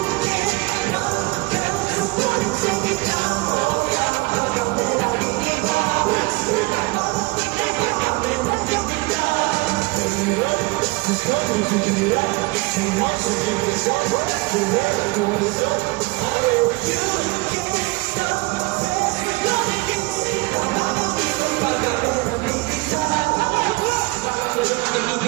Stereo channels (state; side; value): quieter; left; 24.0 dB